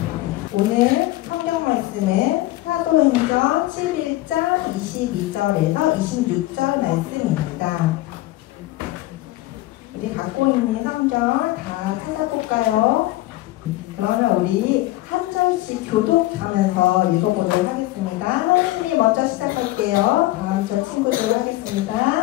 오늘 성경 말씀은 사도행전 11장 22절에서 26절 말씀입니다. 우리 갖고 있는 성경 다 찾아볼까요? 그러면 우리 한 절씩 교독하면서 읽어보도록 하겠습니다. 하나님이 먼저 시작할게요. 다음 절 친구들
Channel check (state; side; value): quieter; right; 17.5 dB